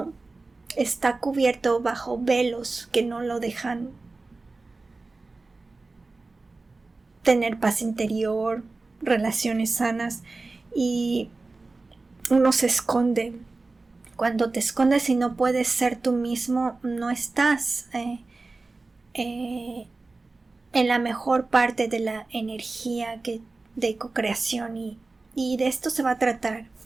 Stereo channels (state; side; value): quieter; left; 3.5 dB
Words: está cubierto bajo velos que no lo dejan tener paz interior, relaciones sanas, y uno se esconde. Cuando te escondes y no puedes ser tú mismo, no estás en la mejor parte de la energía de co-creación y y de esto se va a tratar.